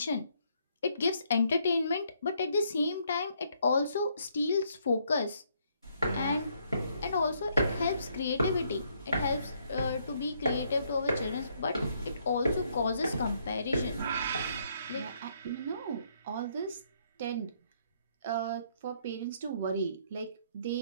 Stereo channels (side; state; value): both; inverted; correlation -0.70